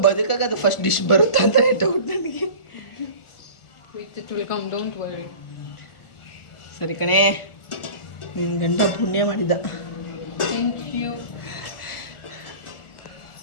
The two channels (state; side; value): late; right; 1.4 ms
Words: ಬದುಕಾಗ ಅದು ಫಸ್ಟ್ ಡಿಶ್ ಬರುತ್ತೆ ಅಂತ ಡೌಟ್ ನನಗೆ. ಸರಿ ಕಣೆ, ನಿನ್ನ ಗಂಡ ಪುಣ್ಯ ಮಾಡಿದ್ದ